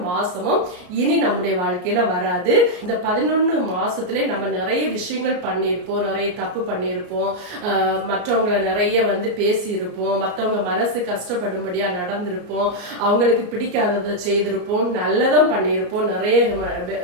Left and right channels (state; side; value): late; left; 33 ms